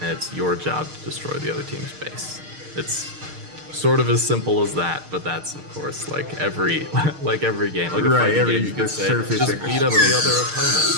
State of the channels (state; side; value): late; left; 6.5 ms